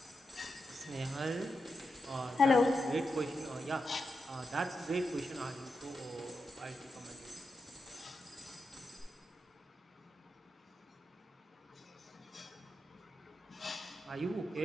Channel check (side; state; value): both; normal; correlation 0.87